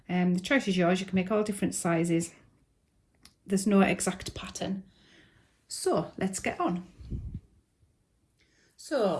The choice is yours. You can make all different sizes. There's no exact pattern. So let's get on.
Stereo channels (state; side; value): identical; both; correlation 1.00